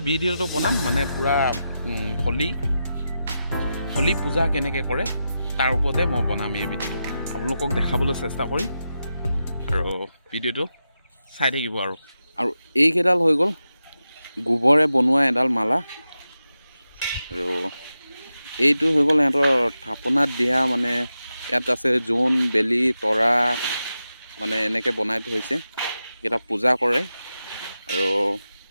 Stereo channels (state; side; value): inverted; both; correlation -0.90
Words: ভিডিঅ'টো বনাম মানে পুৰা হোলী পূজা কেনেকৈ কৰে তাৰ ওপৰতে মই বনাম এই ভিডিঅ'টো আপোনালোকক দেখাবলৈ চেষ্টা কৰিম আৰু ভিডিঅ'টো চাই থাকিব আৰু এইকেইডাল হৈ গ'ল গোবৰে বনোৱা এডাল মালা আৰু এইটো হৈ গ'ল সিহঁতৰ থাপনাত দিয়া মানে ইয়াত আছে জোন বেলি তৰা মানে এনেকৈ বনাই থৈছে এইকেইটা পূজা কৰে